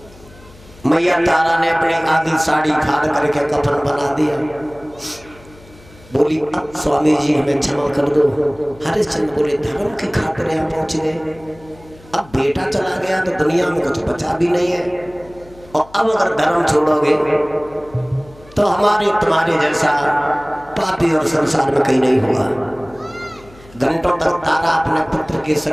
मैया तारा ने अपनी आधी साड़ी फाड़ करके कफन बना दिया। बोली, अब स्वामी जी हमें क्षमा कर दो। हरिश्चंद्र बोले, धर्म की खातिर यहाँ पहुंच गए, अब बेटा चला गया तो दुनिया में कुछ बचा भी नहीं है, और अब अगर धर्म छोड़ोगे तो हमारे तुम्हारे जैसा पापी और संसार में कहीं नहीं होगा। घंटों तक तारा अपने पुत्र के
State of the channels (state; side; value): noise; left; hum, 24 dB below the sound